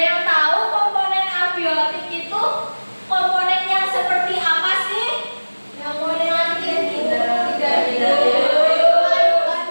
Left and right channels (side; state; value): both; inverted; correlation -1.00